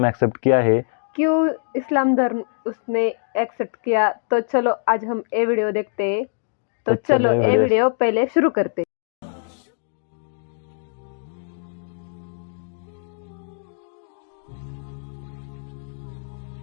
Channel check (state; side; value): silent; right; digital silence